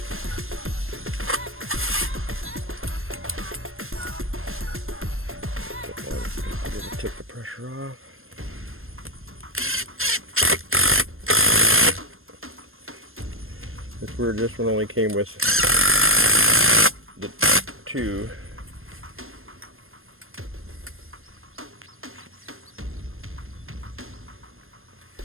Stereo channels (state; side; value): late; left; 0.60 ms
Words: Take the pressure off. It's weird, this one only came with the two.